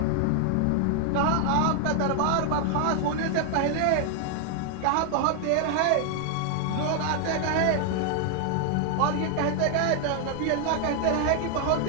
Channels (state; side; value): different; both; correlation 0.00